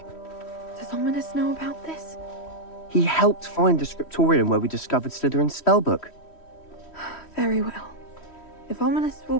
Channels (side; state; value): right; late; 3.1 ms